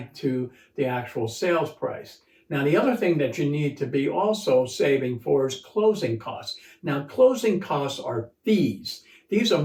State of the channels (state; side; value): identical; both; correlation 1.00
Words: to the actual sales price. Now, the other thing that you need to be also saving for is closing costs. Now, closing costs are fees. These are